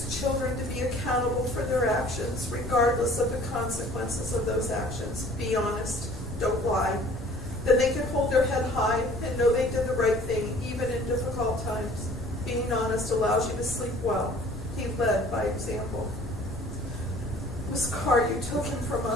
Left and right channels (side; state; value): both; normal; correlation 0.51